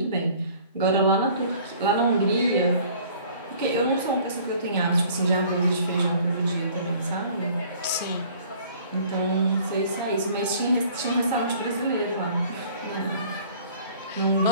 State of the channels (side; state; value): both; inverted; correlation -0.53